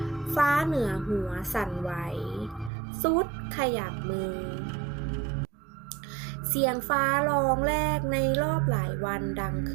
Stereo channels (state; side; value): drops out; left; at 2.7 s